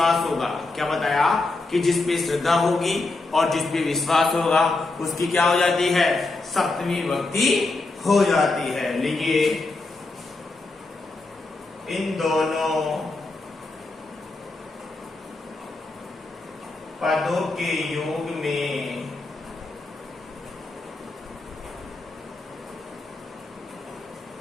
होगा, क्या बताया? कि जिस पे श्रद्धा होगी और जिस पे विश्वास होगा उसकी क्या हो जाती है? सप्तमी विभक्ति हो जाती है। लिखिए, इन दोनों पदों के योग में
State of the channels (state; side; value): quieter; right; 3.3 dB